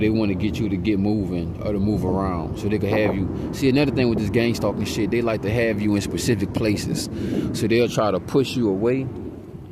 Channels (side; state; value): both; identical; correlation 1.00